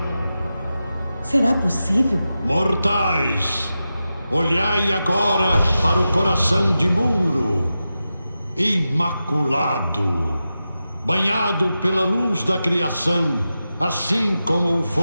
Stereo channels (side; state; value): both; inverted; correlation -0.91